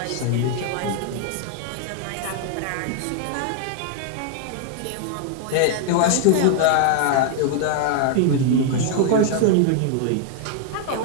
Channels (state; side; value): different; both; correlation 0.00